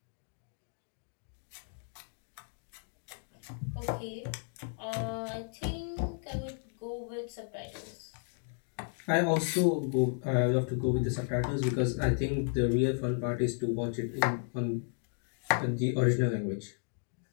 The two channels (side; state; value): right; silent; 55 dB below the other